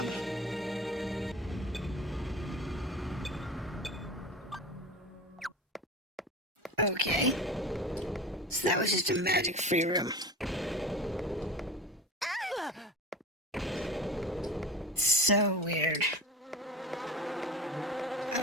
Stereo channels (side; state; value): both; normal; correlation 0.33